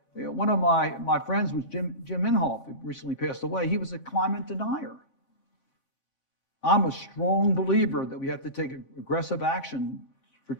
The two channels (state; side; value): late; right; 3.5 ms